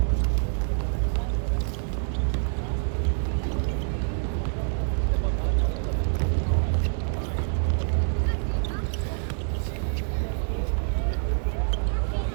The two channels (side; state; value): left; silent; digital silence